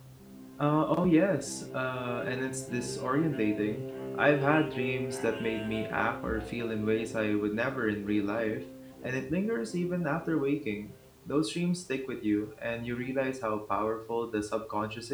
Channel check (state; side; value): identical; both; correlation 1.00